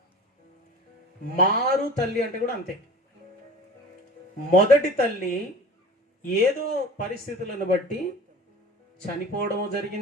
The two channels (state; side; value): normal; both; correlation 0.40